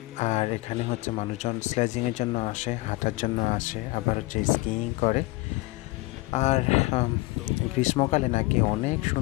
আর এখানে হচ্ছে মানুষজন স্লেজিংয়ের জন্য আসে, হাঁটার জন্য আসে, আবার হচ্ছে স্কিইং করে। আর গ্রীষ্মকালে নাকি অনেক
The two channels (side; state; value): right; quieter; 22.1 dB